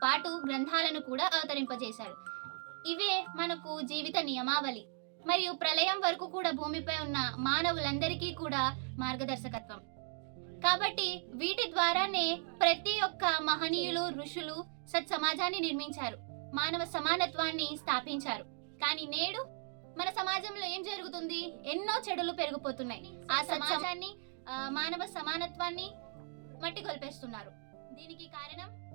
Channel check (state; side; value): silent; left; 53 dB below the other